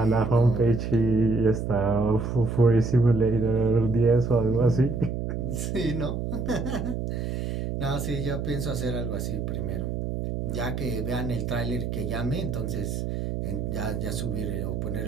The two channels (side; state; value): right; noise; hum, 3 dB below the sound